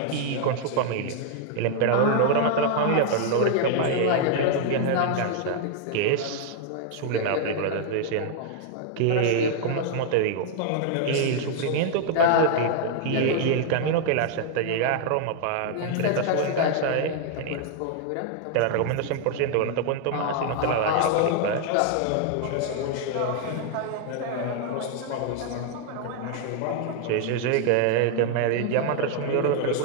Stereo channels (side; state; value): both; different; correlation 0.00